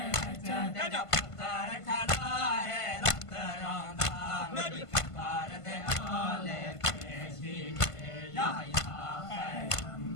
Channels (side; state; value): right; late; 1.5 ms